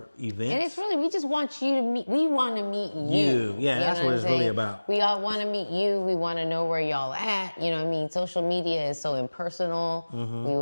events. And it's really, we just want you to meet. We want to meet you. Yeah, that's what it's really about. We all want to meet you. We want to know where y'all at. You know what I mean? Social media is so impersonal. We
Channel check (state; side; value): inverted; both; correlation -1.00